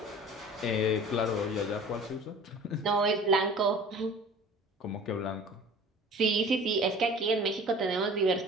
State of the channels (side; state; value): both; normal; correlation 0.44